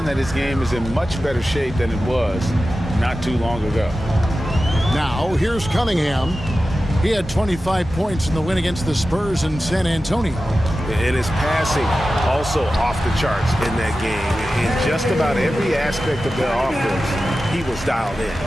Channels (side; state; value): both; normal; correlation 0.94